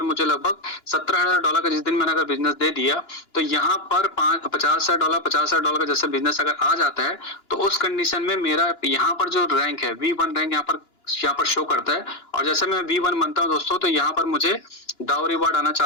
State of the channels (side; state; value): right; late; 2.9 ms